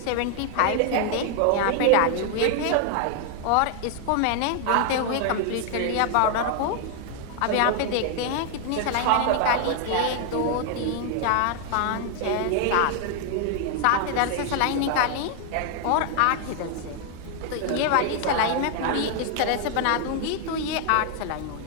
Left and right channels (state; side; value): different; both; correlation 0.00